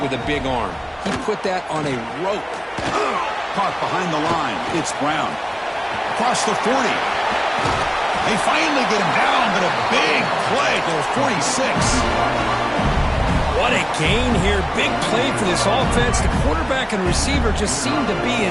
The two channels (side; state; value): both; identical; correlation 1.00